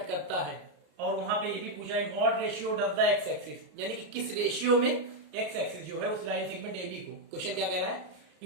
करता है, और वहां पे ये भी पूछा है what ratio does the x axis, यानी कि किस रेशियो में एक्स एक्सिस जो है उस लाइन सेगमेंट ए बी को। क्वेश्चन क्या कह रहा है,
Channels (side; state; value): left; late; 34 ms